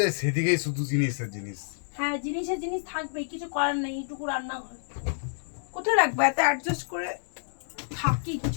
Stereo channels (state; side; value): silent; right; digital silence